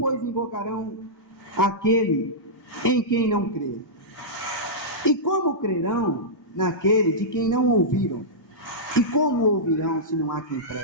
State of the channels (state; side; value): normal; both; correlation -0.13